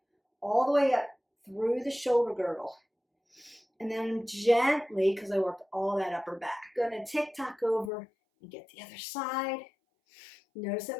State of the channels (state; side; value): drops out; right; at 7.9 s